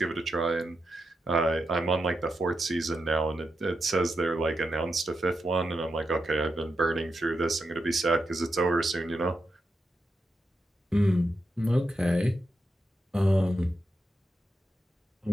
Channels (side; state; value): both; normal; correlation 0.86